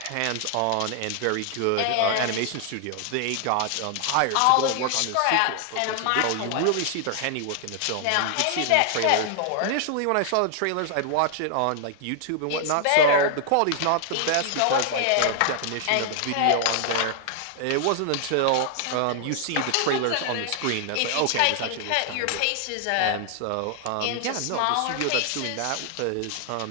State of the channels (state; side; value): different; both; correlation 0.00